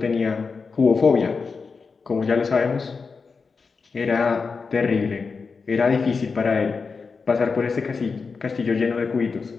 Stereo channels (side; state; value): right; quieter; 4.9 dB